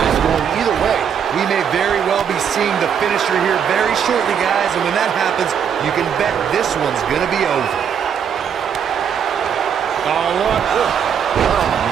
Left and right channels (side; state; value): left; quieter; 7.9 dB